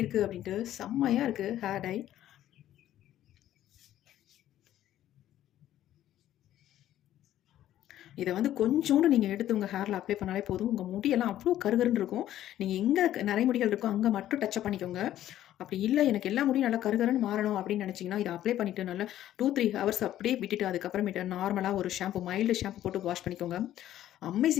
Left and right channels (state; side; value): quieter; right; 12.6 dB